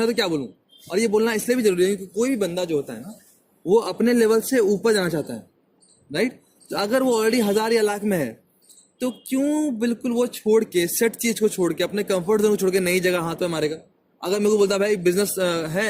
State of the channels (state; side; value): identical; both; correlation 1.00